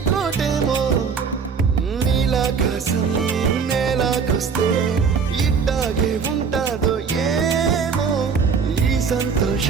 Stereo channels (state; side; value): quieter; left; 5.9 dB